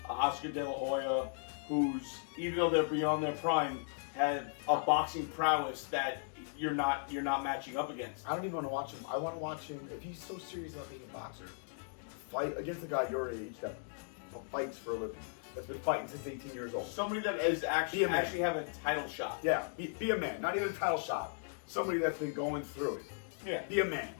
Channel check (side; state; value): right; silent; digital silence